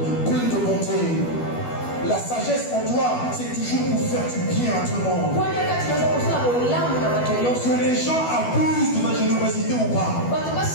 Pleine de bonté. La sagesse en toi, c'est toujours pour faire du bien à tout le monde. Que les gens abusent de ta générosité ou pas,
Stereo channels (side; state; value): right; late; 12 ms